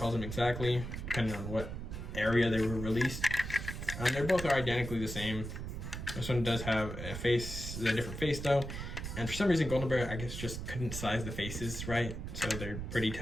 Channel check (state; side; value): noise; right; rumble, 7 dB below the sound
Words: them exactly, depending on what area they were released. They both are identically the same. This one does have a different face though. And for some reason, Golden Bear, I guess, just couldn't size the faces right. So they're pretty